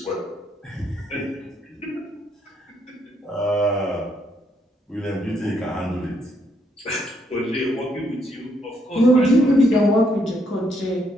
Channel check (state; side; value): normal; both; correlation 0.73